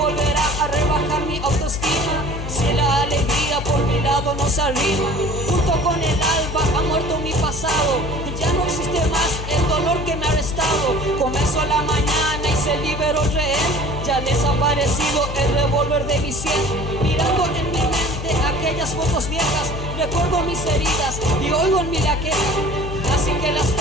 a rebajar mi autoestima si la alegría por mi lado no se arrima. Junto con el alba ha muerto mi pasado, ya no existe más el dolor que me ha arrestado. Comenzó la mañana y se liberó el rehén, ya ha desaparecido el revólver de mi sien. Mirando en mi mente aquellas fotos viejas, recuerdo mis heridas y oigo en mí la queja. Así que las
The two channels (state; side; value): noise; left; hum, 6 dB below the sound